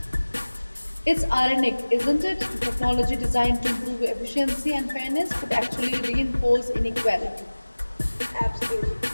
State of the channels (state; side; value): inverted; both; correlation -1.00